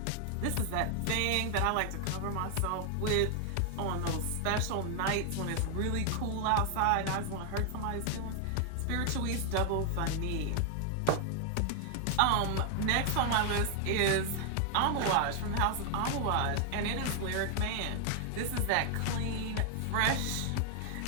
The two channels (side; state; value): both; different; correlation 0.00